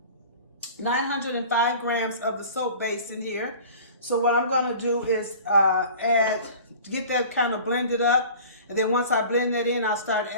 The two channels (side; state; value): both; inverted; correlation -0.42